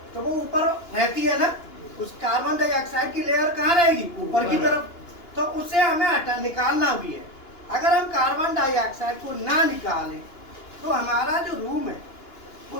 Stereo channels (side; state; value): right; late; 2.9 ms